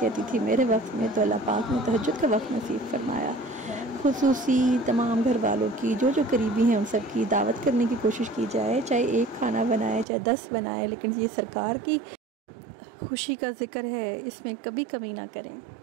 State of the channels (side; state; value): left; drops out; at 10.1 s